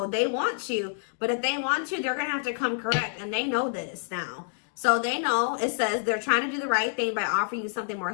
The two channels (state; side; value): silent; right; digital silence